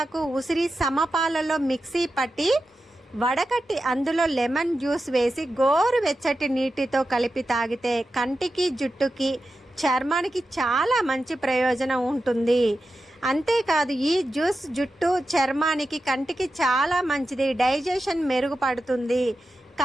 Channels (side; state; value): both; normal; correlation 0.91